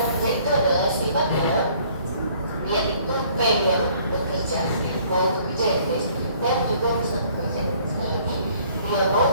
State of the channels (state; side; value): inverted; both; correlation -0.59